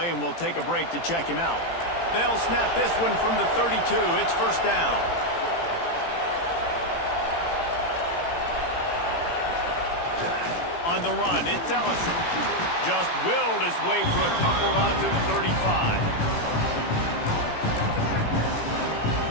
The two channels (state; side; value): late; right; 18 ms